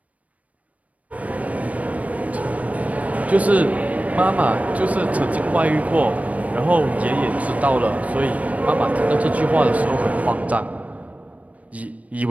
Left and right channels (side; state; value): left; late; 0.068 ms